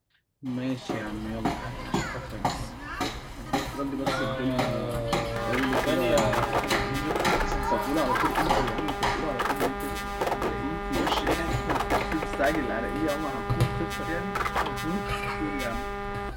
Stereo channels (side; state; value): both; identical; correlation 1.00